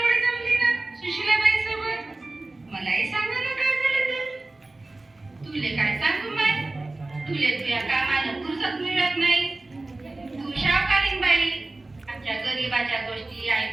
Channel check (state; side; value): quieter; left; 3.0 dB